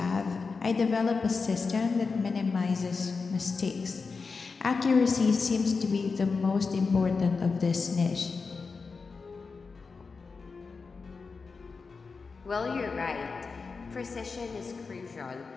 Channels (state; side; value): quieter; right; 4.7 dB